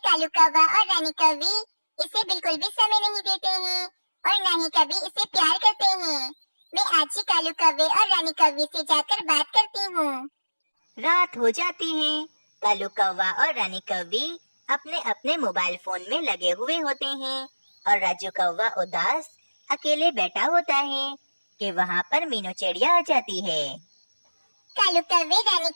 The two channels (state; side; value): inverted; both; correlation -1.00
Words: कौवा और रानी कौवी इसे बिल्कुल भी समय नहीं देते हैं और न ही कभी इसे प्यार करते हैं। मैं आज ही कालू कौवे और रानी कौवी से जाकर बात करती हूँ। रात हो जाती है। कालू कौवा और रानी कौवी अपने अपने मोबाइल फोन में लगे हुए होते हैं और राजू कौवा उदास अकेले बैठा होता है कि वहाँ पर मीनू चिड़िया आ जाती है। कालू कौवे, रानी